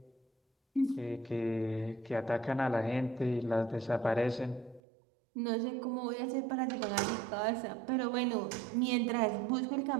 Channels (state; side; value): drops out; left; at 4.8 s